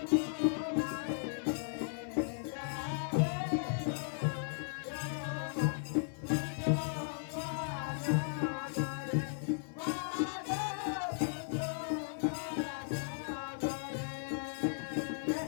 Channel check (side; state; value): right; silent; digital silence